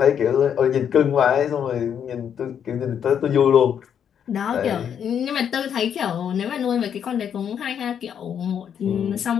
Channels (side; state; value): right; quieter; 8.4 dB